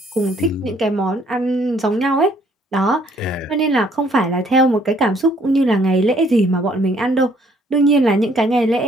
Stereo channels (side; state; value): both; normal; correlation 0.63